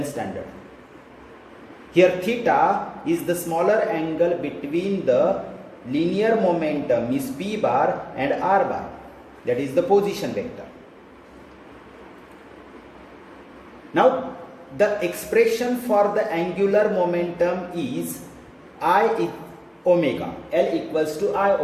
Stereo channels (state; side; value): identical; both; correlation 1.00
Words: standard? Here theta is the smaller angle between the linear momentum is P bar and R bar, that is the position vector. Now the expression for the angular momentum is I omega, L equals to I